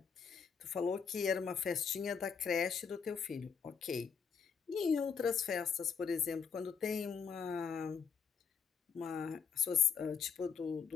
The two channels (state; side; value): quieter; right; 6.4 dB